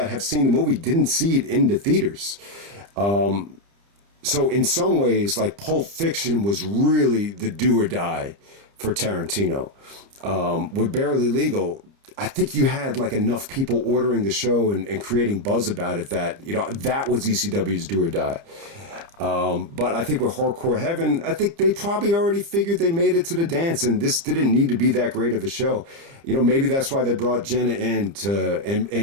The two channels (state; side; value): late; left; 30 ms